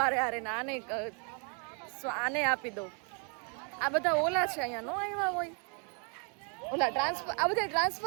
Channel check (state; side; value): quieter; left; 38.9 dB